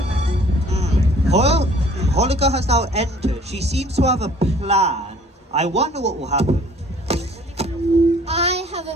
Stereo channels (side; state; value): both; normal; correlation 0.54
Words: Holika has now entered. She seems to have a plan. I wonder what will happen. I have